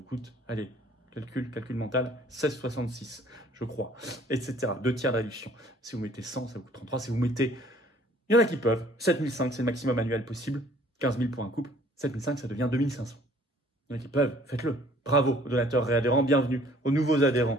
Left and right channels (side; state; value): both; normal; correlation 0.56